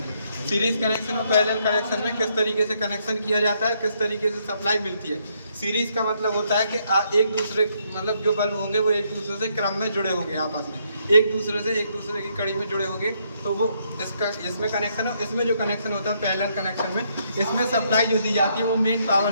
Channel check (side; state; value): both; inverted; correlation -0.73